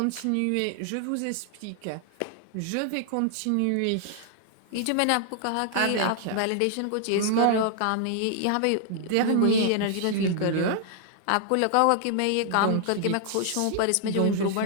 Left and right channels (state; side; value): different; both; correlation -0.01